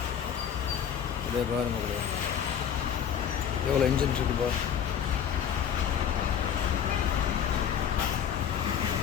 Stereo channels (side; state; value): right; quieter; 8.5 dB